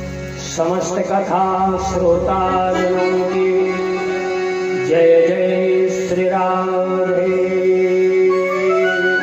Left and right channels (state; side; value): identical; both; correlation 1.00